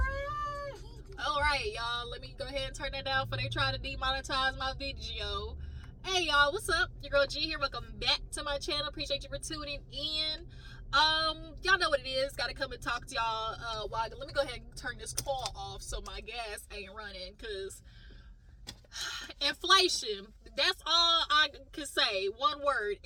Alright, y'all. Let me go ahead and turn that down before they try to demonetize my video. Hey, y'all. What's up? Your girl G here. Welcome back to my channel. Appreciate you for tuning in. Y'all know what it is. Gotta come and talk to y'all. Let me go ahead and turn this call off so my gas ain't running, because inflation, that's all I can say. One word:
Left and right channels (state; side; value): identical; both; correlation 1.00